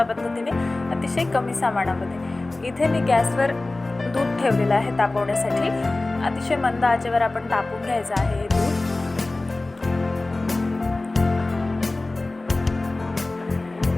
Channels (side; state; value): right; quieter; 3.0 dB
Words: पद्धतीने, अतिशय कमी सामानामध्ये। इथे मी गॅसवर दूध ठेवलेलं आहे तापवण्यासाठी। अतिशय मंद आचेवर आपण तापवून घ्यायचं आहे हे दूध।